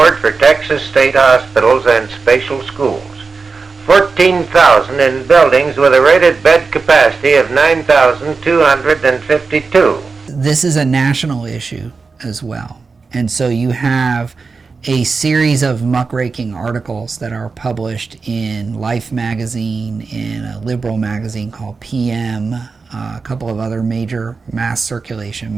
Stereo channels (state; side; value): quieter; left; 4.5 dB